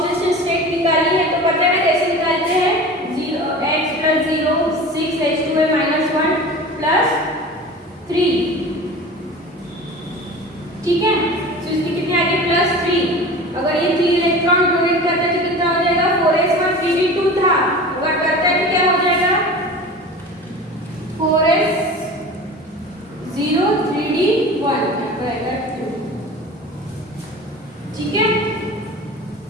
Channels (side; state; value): both; normal; correlation 0.36